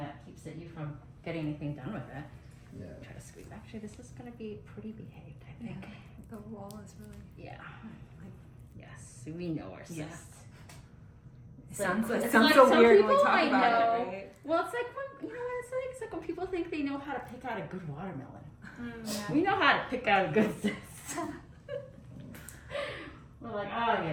keeps you from getting anything done with it. Yeah. Try to squeeze. Actually, this is going to be pretty behaved, I think. The wall is really. Yeah. Yes, we know our cysts. Yeah. It's Sounds it's so some weird when we people talk I about know. it, right? Well, it's like when what it's like. It's like when people think they know how to pick out a good watermelon. Yeah. We know how to pick out a good cyst. We're like, oh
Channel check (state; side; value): identical; both; correlation 1.00